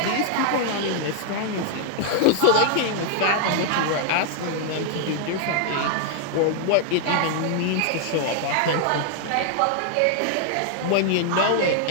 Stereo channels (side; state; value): both; different; correlation 0.00